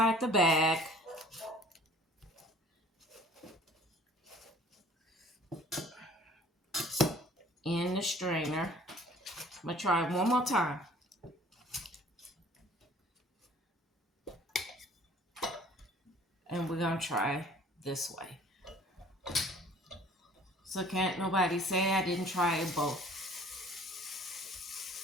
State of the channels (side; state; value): both; normal; correlation 0.51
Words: the bag. In the strainer. I'm going to try one more time. And we're going to try this way. So can't nobody say I didn't try it both.